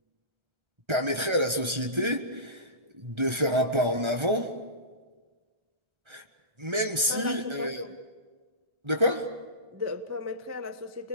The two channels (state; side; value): late; left; 1.3 ms